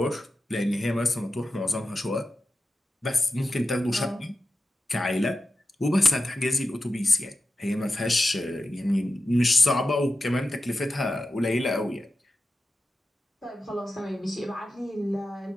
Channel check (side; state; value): both; normal; correlation 0.92